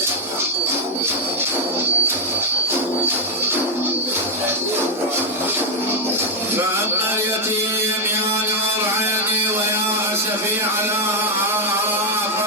فأما اليتيم يا نور عيني ويا أسفي على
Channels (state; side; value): normal; both; correlation 0.01